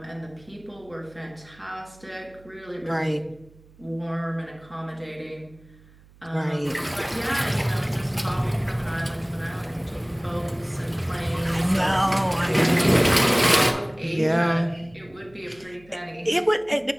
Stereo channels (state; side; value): noise; right; hum, 26 dB below the sound